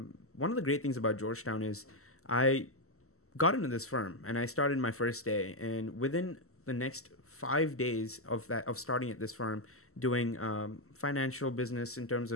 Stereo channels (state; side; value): late; right; 0.63 ms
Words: one of the great things about Georgetown is I got into this firm and I started my first day, and within the next 5 days of starting at this firm, doing financial business in terms